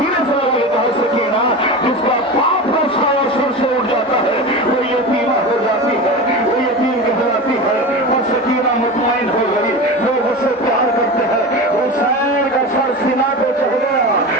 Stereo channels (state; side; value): normal; both; correlation 0.27